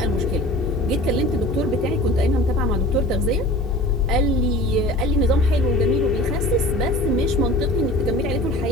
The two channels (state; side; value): normal; both; correlation 0.41